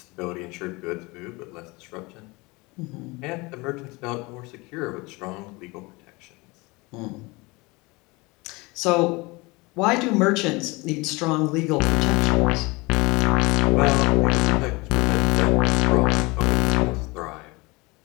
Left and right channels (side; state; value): right; quieter; 24.7 dB